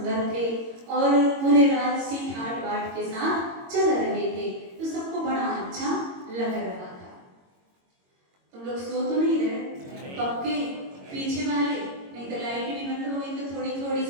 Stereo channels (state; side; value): late; left; 22 ms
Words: थे, और पूरे राजसी ठाट बाट के साथ चल रहे थे, तो सबको बड़ा अच्छा लग रहा था। तुम लोग सो तो नहीं रहे? पक्के पीछे वाले? नहीं तो लाइट भी बंद हो गई तो थोड़ी थोड़ी